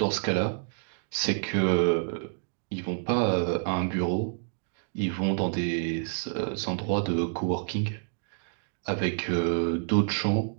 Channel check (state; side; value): silent; left; digital silence